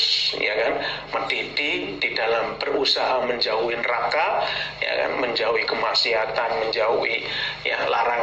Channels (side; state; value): both; identical; correlation 1.00